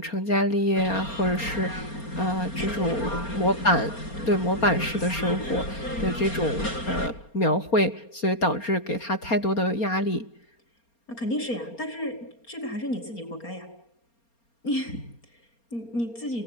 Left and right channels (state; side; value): late; right; 4.3 ms